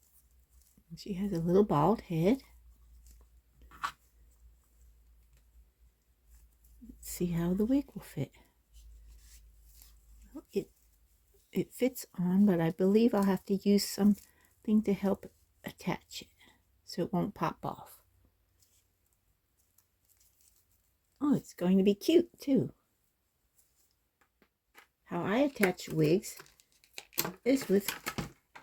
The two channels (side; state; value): both; identical; correlation 1.00